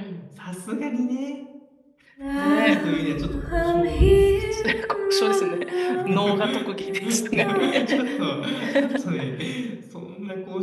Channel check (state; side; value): identical; both; correlation 1.00